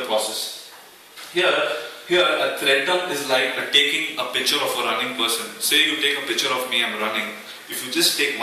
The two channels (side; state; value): both; identical; correlation 1.00